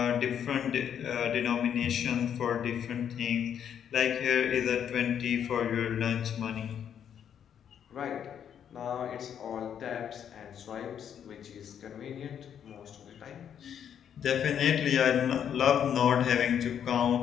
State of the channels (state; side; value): quieter; right; 8.8 dB